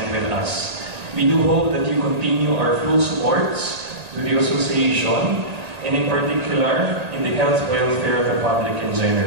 with us. We do hope that you continue our full supports to the association and in particular in the health welfare of the public in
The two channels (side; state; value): left; late; 1.9 ms